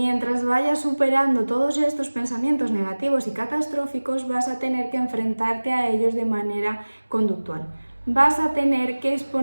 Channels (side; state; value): both; inverted; correlation -1.00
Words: vayas superando todos estos pensamientos negativos y catastróficos, vas a tener que enfrentarte a ellos de manera conductual. Vas a tener que